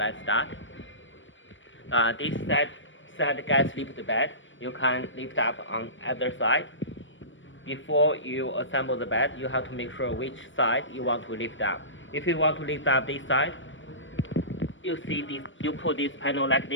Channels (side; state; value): right; late; 0.56 ms